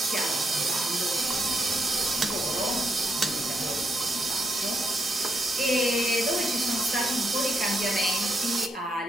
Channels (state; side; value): normal; both; correlation 0.80